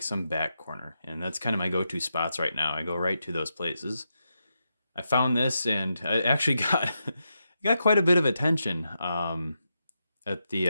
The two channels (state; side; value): inverted; both; correlation -0.86